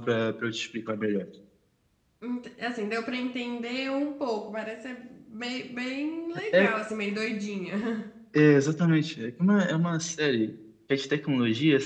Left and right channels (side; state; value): both; identical; correlation 1.00